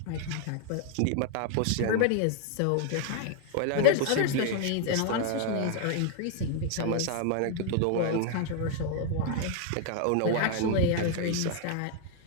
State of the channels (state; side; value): different; both; correlation 0.00